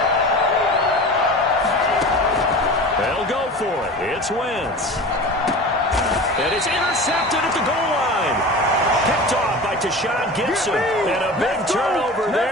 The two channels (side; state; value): both; normal; correlation 0.34